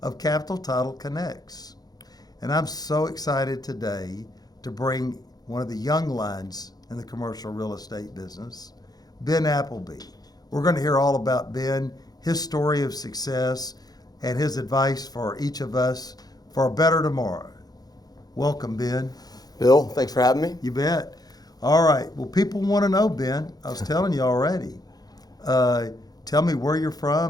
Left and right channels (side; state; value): right; late; 0.19 ms